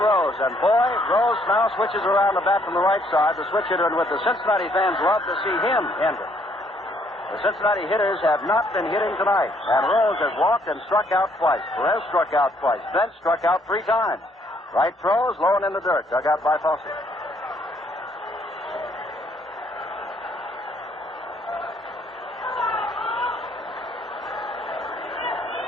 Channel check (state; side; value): normal; both; correlation 0.67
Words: and boy, Rose now switches around the bat from the right side, the switch hitter, and with the Cincinnati fans love to see him enter. The Cincinnati hitters have not been hitting tonight, and Rose has walked and struck out twice. Perez struck out twice. Bench struck out 3 times. Right throws, low and in the dirt, dug out by Fosse.